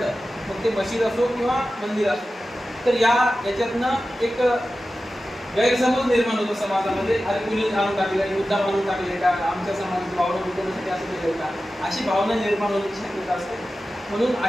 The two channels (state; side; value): normal; both; correlation 0.94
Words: मग ते मशीद असो किंवा मंदिर असो, तर याच्यातनं एक गैरसमज निर्माण होतो समाजामध्ये. अरे कुणी आणून टाकले, मुद्दा आणून टाकले का, आमच्या समाजाची भावना दुखवण्यासाठी असं केलं का, अशी भावना निर्माण होण्याची शक्यता असते. म्हणून